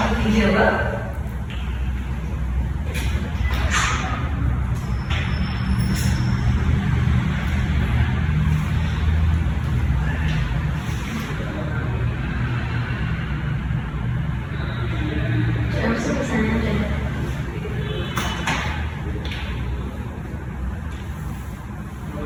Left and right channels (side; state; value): both; identical; correlation 1.00